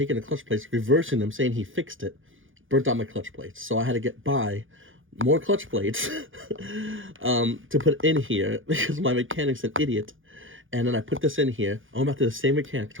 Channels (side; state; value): left; late; 0.58 ms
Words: the clutch plates, reversing them, saying he fixed it, burnt out my clutch plates. So I had to buy more clutch plates to put in here because my mechanic's an idiot. And then I put this in here. I went back to the same mechanic,